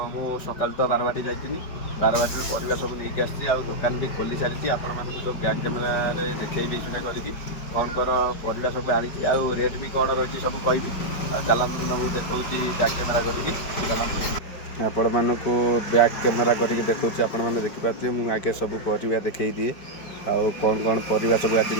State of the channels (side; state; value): right; late; 5.2 ms